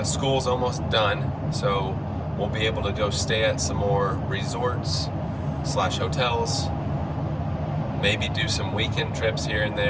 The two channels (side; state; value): both; identical; correlation 1.00